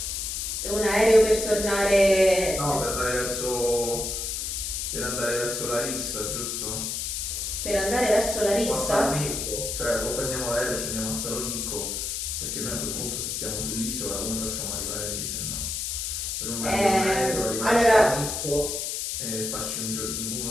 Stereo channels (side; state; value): left; noise; hiss, 3 dB below the sound